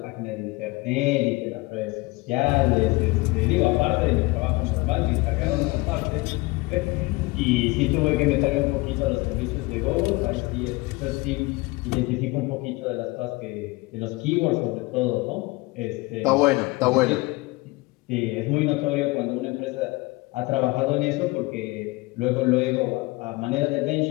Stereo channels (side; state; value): right; quieter; 23.1 dB